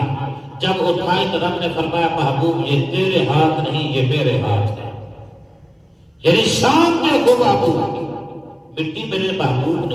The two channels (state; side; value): identical; both; correlation 1.00